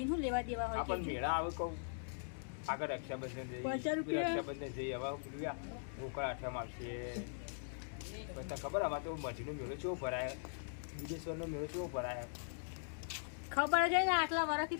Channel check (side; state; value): right; silent; digital silence